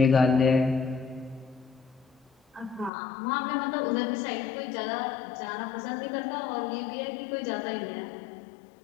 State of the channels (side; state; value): right; drops out; at 2.9 s